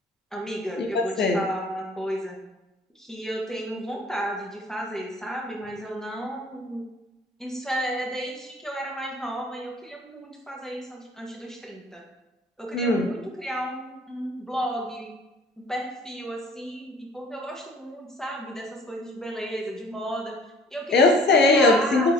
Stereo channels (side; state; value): both; normal; correlation 0.51